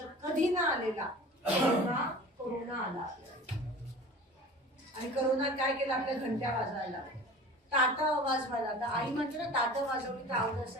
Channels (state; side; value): normal; both; correlation 0.40